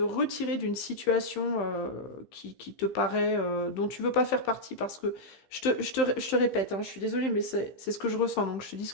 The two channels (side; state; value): right; late; 15 ms